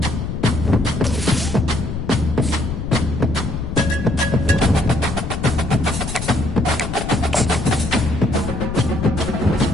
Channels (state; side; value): noise; left; rumble, 5 dB below the sound